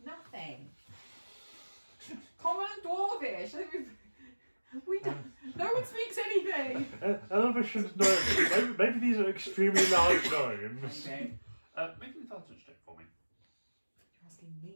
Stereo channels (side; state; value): both; inverted; correlation -1.00